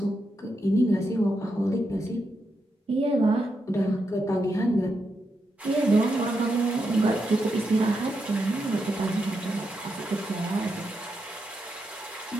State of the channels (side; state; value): both; normal; correlation 0.84